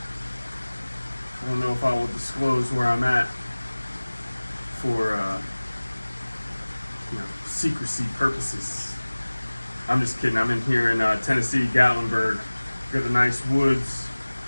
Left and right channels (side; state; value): both; inverted; correlation -1.00